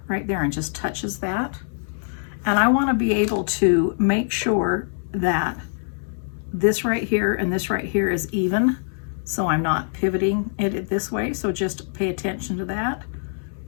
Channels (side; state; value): right; silent; 63 dB below the other